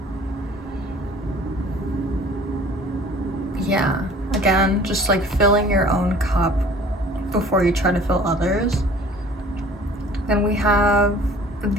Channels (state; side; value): normal; both; correlation 0.49